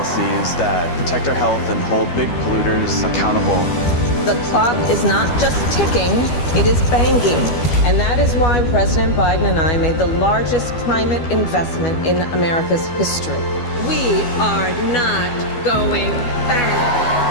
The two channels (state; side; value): late; right; 12 ms